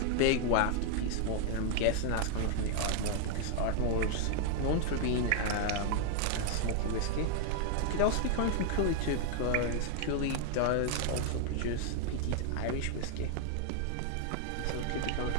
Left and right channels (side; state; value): both; different; correlation 0.00